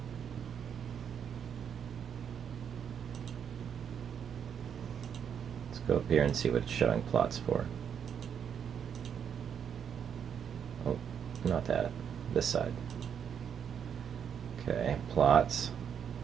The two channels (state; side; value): quieter; left; 7.9 dB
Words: Let's go up here and see what it's showing plots for. Oh, not that. This side. Okay, plots.